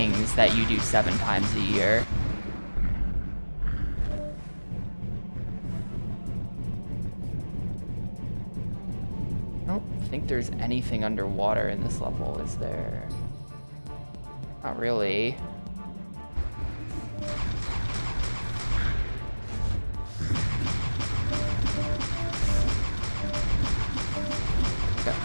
that you do 7 times a year. I don't think there's anything underwater in this level, is there? Not really.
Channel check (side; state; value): both; inverted; correlation -1.00